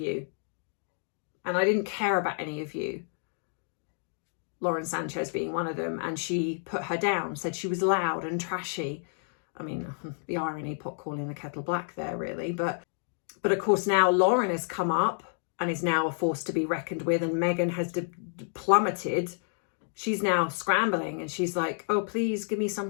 and I didn't care about any of you. Lauren Sanchez being one of them, and she put her down, said she was loud and trashy. I mean, the irony, pot calling the kettle black there, really. But of course now Lauren has come up and is now a force to be reckoned with, and Meghan has plummeted. She's now scrambling, and she's like, oh, please give me some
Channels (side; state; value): right; silent; 58 dB below the other